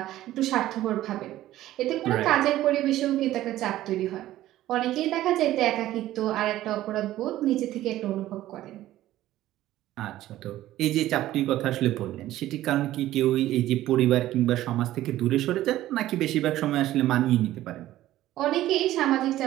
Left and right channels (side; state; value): left; quieter; 14.5 dB